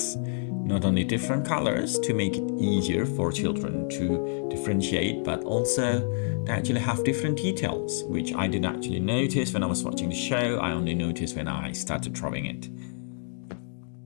not only different colors to make it easier for children to differentiate, but also they actually have different details, which I didn't actually notice when I was watching the show. I only noticed when I started drawing it.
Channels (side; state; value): right; silent; digital silence